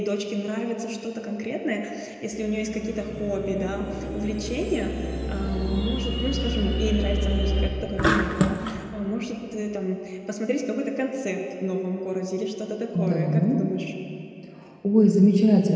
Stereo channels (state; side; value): identical; both; correlation 1.00